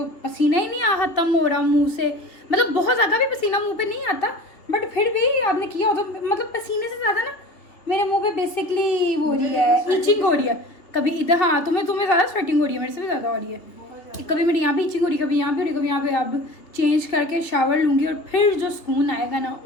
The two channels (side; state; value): right; late; 2.8 ms